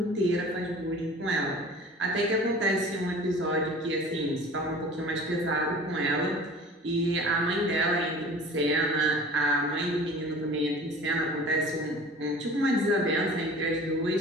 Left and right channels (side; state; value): both; normal; correlation 0.43